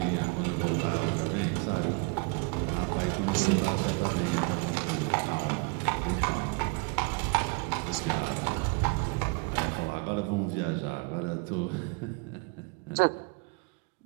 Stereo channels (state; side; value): quieter; left; 31.7 dB